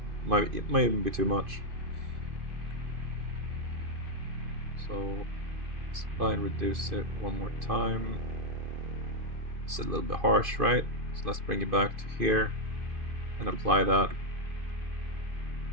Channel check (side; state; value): left; late; 2.5 ms